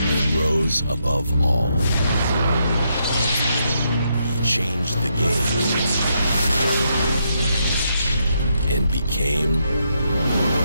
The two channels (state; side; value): inverted; both; correlation -0.79